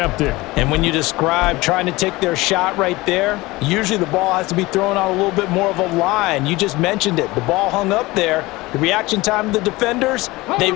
And when you describe trying to take their shot right there, usually the ball has to be thrown on a little bit more of a line. You just mentioned it. The ball hung up there. The reaction time of the defenders, they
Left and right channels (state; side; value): quieter; right; 20.9 dB